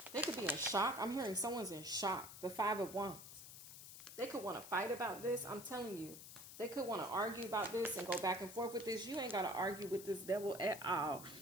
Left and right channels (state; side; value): noise; left; hiss, 13 dB below the sound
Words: They could be in shock. I'm hearing someone's in shock. The Five of Wands. They could want to fight about this. I'm telling you. They could want to argue about this and go back and forth with this. You ain't got to argue with this devil at all.